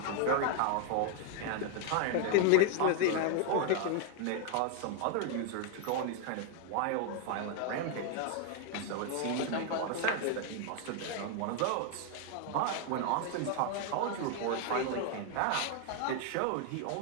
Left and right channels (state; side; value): different; both; correlation 0.00